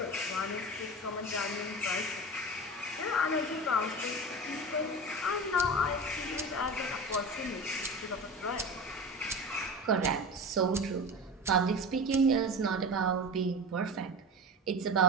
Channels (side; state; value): both; normal; correlation 0.30